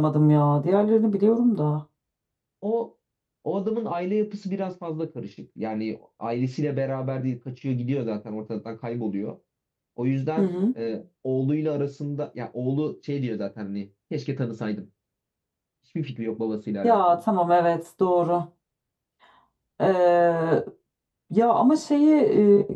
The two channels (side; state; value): both; identical; correlation 1.00